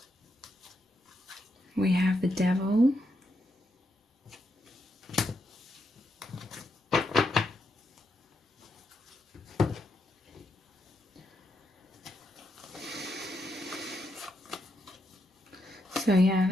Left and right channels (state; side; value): normal; both; correlation 0.81